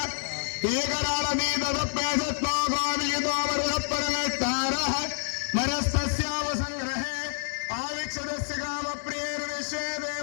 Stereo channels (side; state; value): right; silent; 59 dB below the other